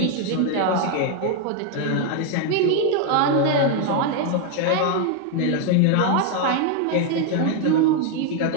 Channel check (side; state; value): both; different; correlation 0.01